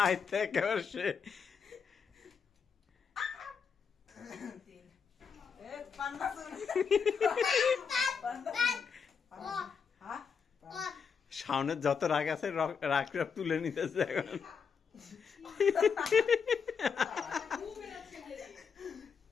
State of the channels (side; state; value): right; quieter; 6.3 dB